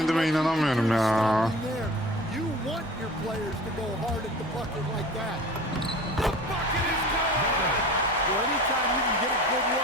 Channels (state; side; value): normal; both; correlation 0.39